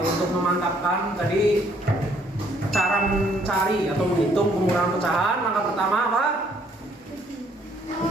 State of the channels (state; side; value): normal; both; correlation 0.65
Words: Untuk memantapkan tadi cara mencari atau menghitung pengurangan pecahan, langkah pertama apa?